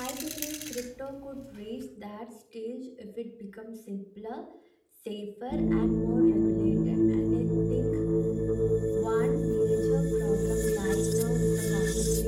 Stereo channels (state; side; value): identical; both; correlation 1.00